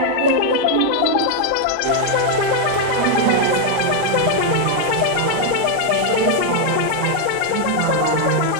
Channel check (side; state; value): both; different; correlation 0.00